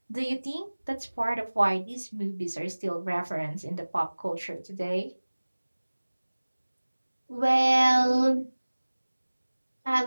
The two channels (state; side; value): inverted; both; correlation -1.00